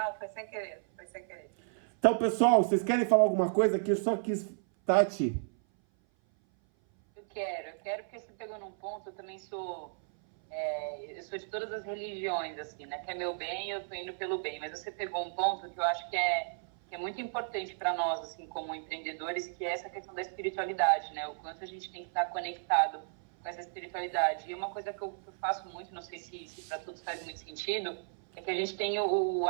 foi sem querer, foi sem querer. Então, pessoal, vocês querem falar alguma coisa? Que eu só quis... Tati. Eu quero porque você pegou num ponto, eu também sou... eu sou de todas as religiões, assim, né? Que é meu bem, eu tô indo pelo bem. Mas você pegou um ponto que eu acho que é muito importante para nós, assim, como empreendedores, que é essa questão da espiritualidade, né? O quanto a gente tem que estar conectado com essa espiritualidade. E uma coisa que eu faço muito, não sei se para todos faz muito sentido, é que a gente tem o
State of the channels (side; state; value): left; silent; 55 dB below the other